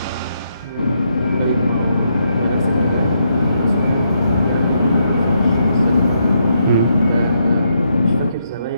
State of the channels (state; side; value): inverted; both; correlation -0.78